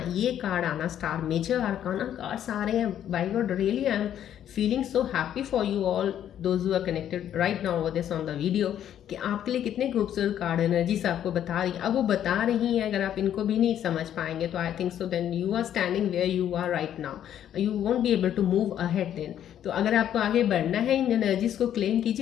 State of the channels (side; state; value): right; quieter; 10.4 dB